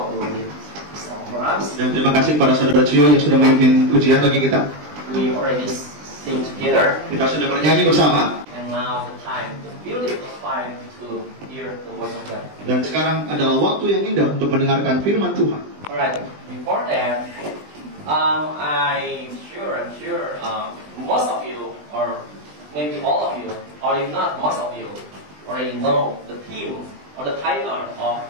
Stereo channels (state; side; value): late; left; 20 ms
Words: who did this song for us. Dan terima kasih kepada saudara Cio yang sudah memimpin ujian bagi kita. We already sing together. Kita sudah bernyanyi bersama. And now the time, the beautiful time to hear the words of God. Dan sekarang adalah waktu yang indah untuk mendengarkan firman Tuhan. Alright, before that, I'm sure, most of you, or maybe all of you, or if not most of you, already know the theme or the title of